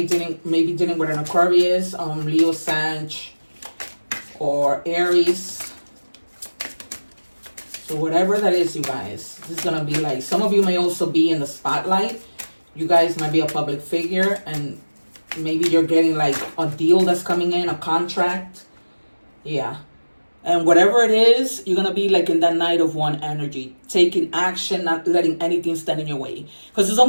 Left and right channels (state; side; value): inverted; both; correlation -1.00